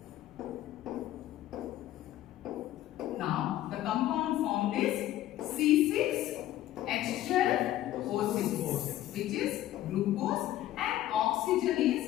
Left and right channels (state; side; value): quieter; right; 13.8 dB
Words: Now the compound formed is C6H12O6, which is glucose, and oxygen is